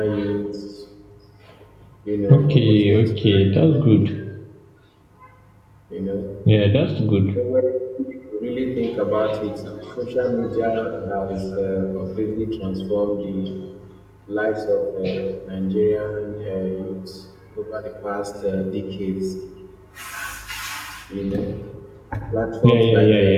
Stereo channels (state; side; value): identical; both; correlation 1.00